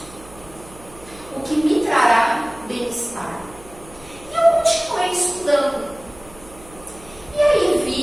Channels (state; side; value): noise; right; hum, 21 dB below the sound